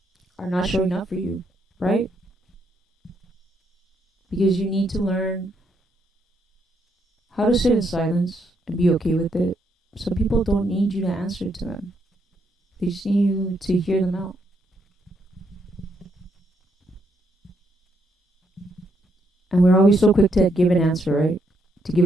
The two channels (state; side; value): normal; both; correlation 0.75